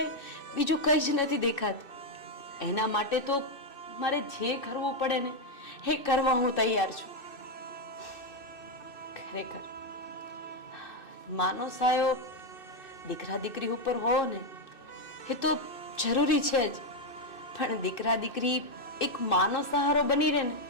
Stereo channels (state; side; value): late; right; 2.6 ms